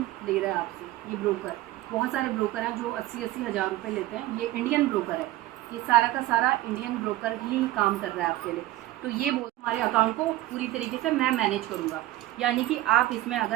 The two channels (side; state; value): left; quieter; 16.2 dB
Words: ले रहा है आपसे ये ब्रोकर। बहुत सारे ब्रोकर हैं जो 80-80 हज़ार रुपये लेते हैं। ये इंडियन ब्रोकर है, ये सारा का सारा इंडियन ब्रोकर ही काम कर रहा है आपके लिए। तो ये हमारे अकाउंट को पूरी तरीके से मैं मैनेज करूँगा, यानी कि आप इसमें